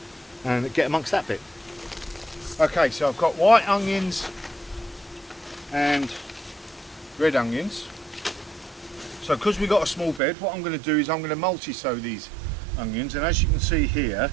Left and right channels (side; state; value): left; drops out; at 10.2 s